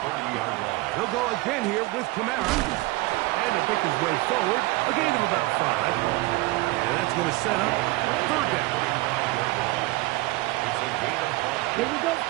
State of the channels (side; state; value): left; quieter; 21.3 dB